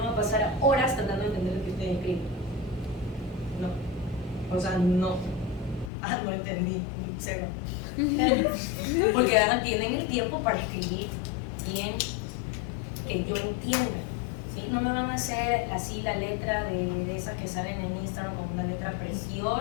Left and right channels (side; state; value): right; drops out; at 5.9 s